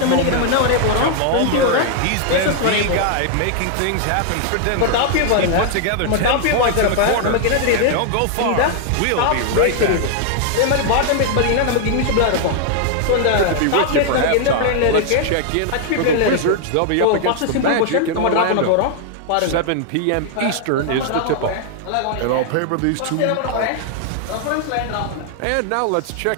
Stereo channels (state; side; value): different; both; correlation 0.00